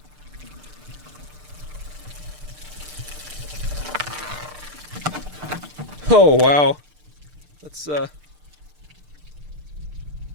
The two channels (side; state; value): left; late; 6.7 ms